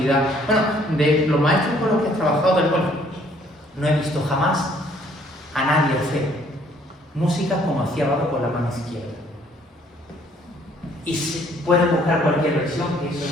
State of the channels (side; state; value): both; normal; correlation 0.62